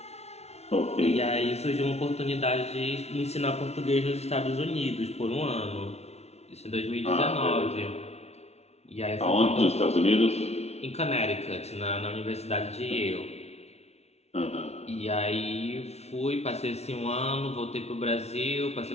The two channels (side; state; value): right; late; 0.31 ms